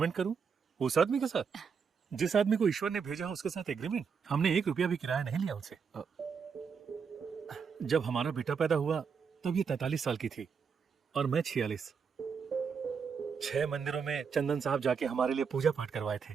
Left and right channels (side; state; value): left; quieter; 6.2 dB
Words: करूं उस आदमी के साथ? जिस आदमी को ईश्वर ने भेजा उसके साथ एग्रीमेंट? हमने 1 रुपया भी किराया नहीं लिया उनसे। जब हमारा बेटा पैदा हुआ तब ये 43 साल की थी और मैं 46। 6 मंदिरों में चंदन साहब जाके हमारे लिए पूजा पाठ करवाए थे।